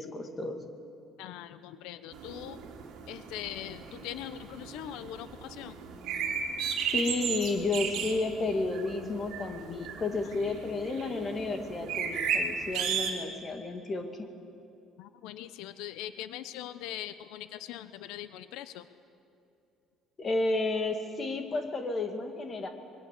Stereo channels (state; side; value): normal; both; correlation 0.63